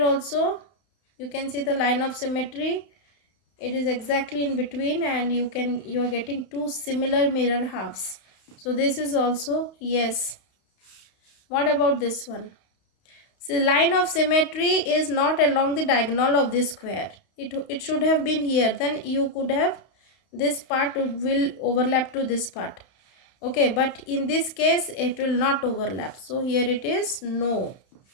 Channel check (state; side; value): late; right; 31 ms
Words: also you can see the line of symmetry. It is exactly in between, and you are getting 2 similar mirror halves. So this is also yes. What about this one? See, line of symmetry is not along the diagonal of this square. It should have been here. Then you could have, this part will overlap to this part. Okay, but in this case it will not overlap. So here it is no.